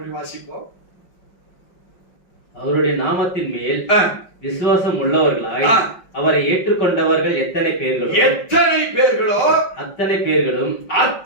வாசிப்போம். அவருடைய நாமத்தின் மேல் விசுவாசம் உள்ளவர்களாய் அவரை ஏற்றுக்கொண்டவர்கள் எத்தனை பேர்களோ அத்தனை பேர்களும்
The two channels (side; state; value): right; late; 5.5 ms